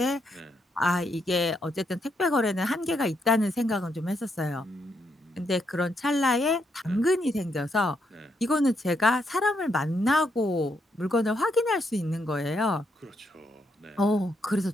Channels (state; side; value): normal; both; correlation 0.77